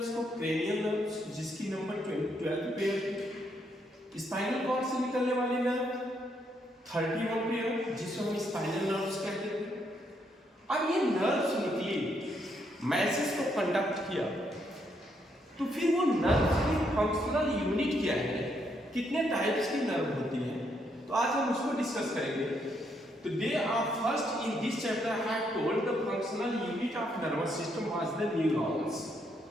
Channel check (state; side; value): normal; both; correlation 0.75